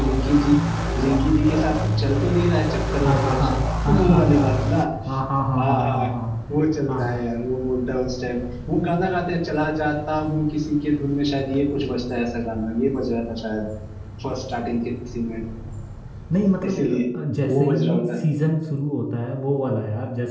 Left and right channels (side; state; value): both; identical; correlation 1.00